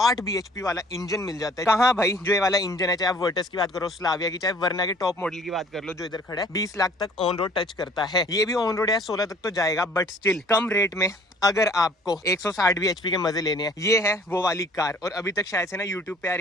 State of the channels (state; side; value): normal; both; correlation 0.54